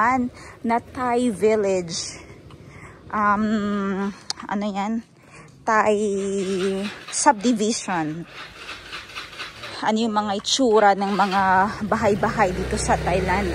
na Thai village. Ano yan? Thai subdivision. Ano yung mga itsura ng mga bahay-bahay dito sa Thailand.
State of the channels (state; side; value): identical; both; correlation 1.00